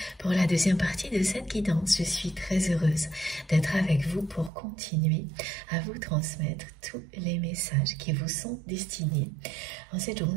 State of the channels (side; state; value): left; drops out; at 4.5 s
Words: pour la deuxième partie de cette guidance. Je suis très heureuse d'être avec vous pour continuer à vous transmettre tous les messages qui vous sont destinés en cette